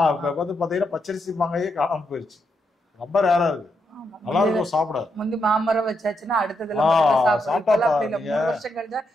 இப்ப வந்து பாத்தீங்கன்னா பச்சரிசி மாங்காயே காணாம போயிருச்சு. ரொம்ப ரேரா இருக்கு. நல்லா இருக்கும் சாப்பிட. முந்தி மாமரம் வச்சாச்சுன்னா அடுத்ததுல வருஷம் கழிச்சா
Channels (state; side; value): normal; both; correlation 0.81